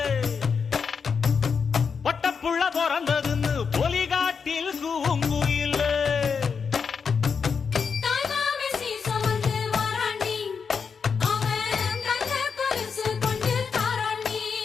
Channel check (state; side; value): quieter; right; 5.9 dB